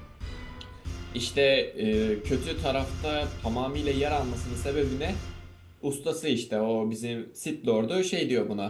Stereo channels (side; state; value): both; identical; correlation 1.00